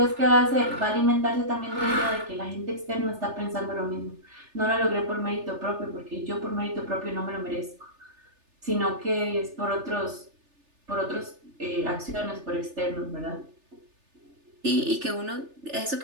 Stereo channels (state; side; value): late; left; 3.3 ms